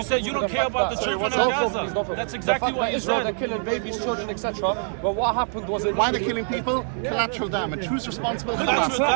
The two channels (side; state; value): left; silent; 62 dB below the other